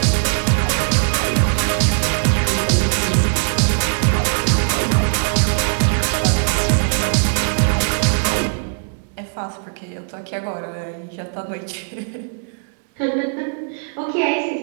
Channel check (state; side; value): silent; left; 66 dB below the other